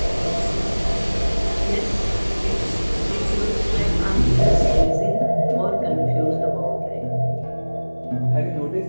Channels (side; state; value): both; inverted; correlation -1.00